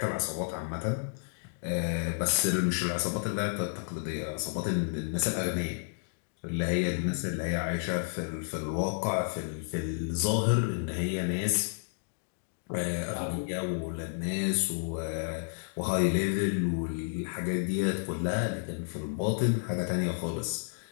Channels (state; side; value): silent; right; digital silence